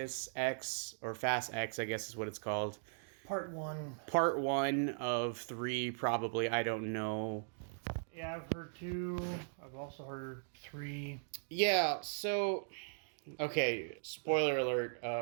X, or Fast X, I guess is what it's called. Part one. Part one of three, probably. I don't know. Yeah, I've heard two. I've also heard three. Yeah. So, okay. Spoiler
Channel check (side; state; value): left; silent; digital silence